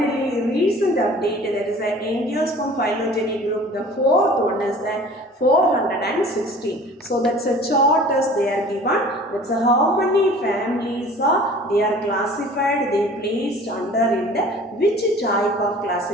recent update, that is an angiosperm phylogeny group, the fourth one is the 416. So that's a chart as they are given, that's how many families are they are classified, they placed under in the which type of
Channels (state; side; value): normal; both; correlation 0.46